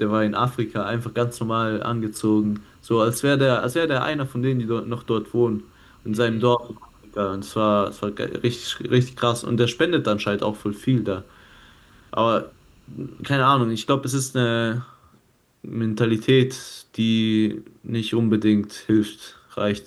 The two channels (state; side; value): identical; both; correlation 1.00